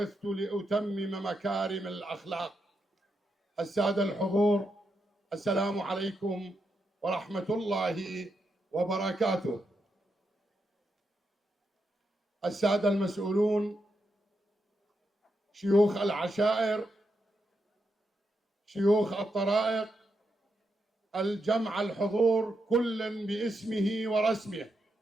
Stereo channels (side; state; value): both; normal; correlation 0.84